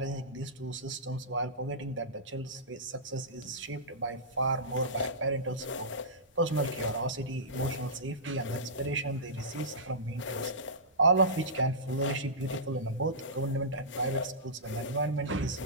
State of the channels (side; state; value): both; normal; correlation -0.18